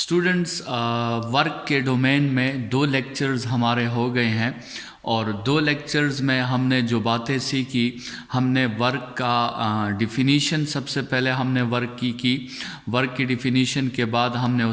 वर्क के डोमेन में 2 लेक्चर्स हमारे हो गए हैं और 2 लेक्चर्स में हमने जो बातें सीखी, हमने वर्क का डिफ़िनीशन सबसे पहले हमने वर्क की वर्क की डिफ़िनीशन के बाद हमने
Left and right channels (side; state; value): both; identical; correlation 1.00